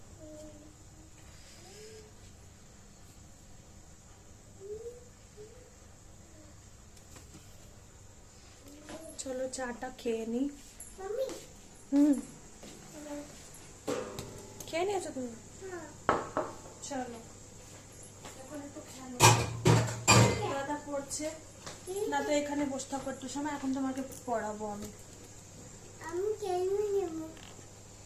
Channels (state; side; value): identical; both; correlation 1.00